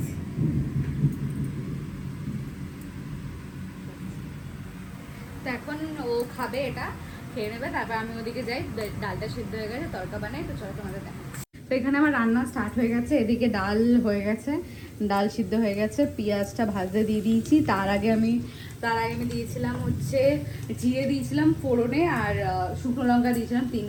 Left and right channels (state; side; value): identical; both; correlation 1.00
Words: তো এখন ও খাবে, এটা খেয়ে নেবে, তারপর আমি ওদিকে যাই, ডালটা সিদ্ধ হয়ে গেছে, তড়কা বানাই। তো চলো তোমাদের দেখাচ্ছি। তো এখানে আমার রান্না স্টার্ট হয়ে গেছে। এদিকে ডাল হয়ে গেছে, ডাল সিদ্ধ হয়ে গেছে, পেঁয়াজটা ভাজতে দিয়ে দিয়েছি। তার আগে আমি দিয়েছিলাম হচ্ছে জিরে দিয়েছিলাম ফোড়নে, আর শুকনো লঙ্কা দিয়েছিলাম